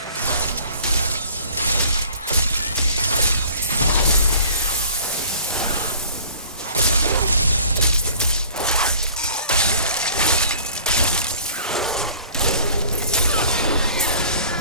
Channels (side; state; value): both; inverted; correlation -0.50